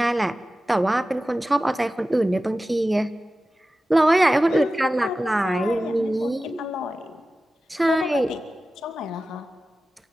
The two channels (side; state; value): both; normal; correlation 0.95